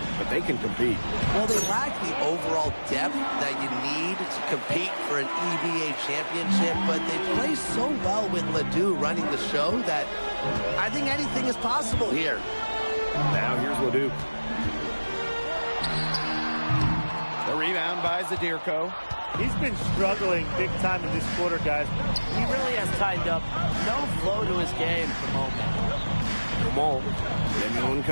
but they can compete. Well, they lack the overall depth that you need to compete for an EBA championship, but they play so well with LeDuc running the show that I think anything is possible here. Now here's LeDuc. The rebound by Zadirko. He's been struggling big time in this quarter, guys. He really has tightened up. No flow to his game at the moment. Dumal. Lemieux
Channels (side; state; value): both; inverted; correlation -1.00